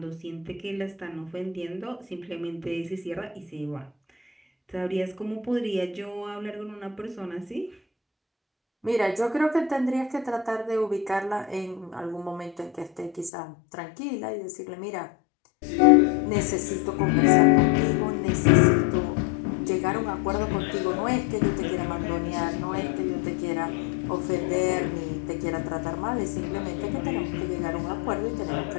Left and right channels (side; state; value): right; drops out; at 13.3 s